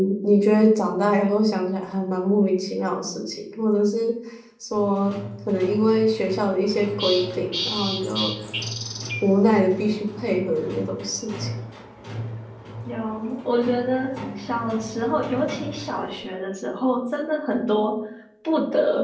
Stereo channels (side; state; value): both; identical; correlation 1.00